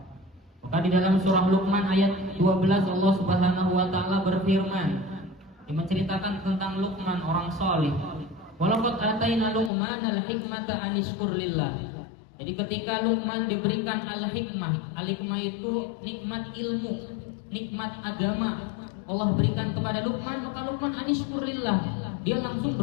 Maka di dalam surah Luqman ayat 12 Allah Subhanahu wa Ta'ala berfirman, yang menceritakan tentang Luqman orang saleh. Walaqad ataina Luqmanal hikmata an yashkur lillah. Jadi ketika Luqman diberikan al-hikmah, al-hikmah itu nikmat ilmu, nikmat agama, Allah berikan kepada Luqman, maka Luqman an yashkur lillah, dia langsung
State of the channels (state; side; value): drops out; right; at 9.7 s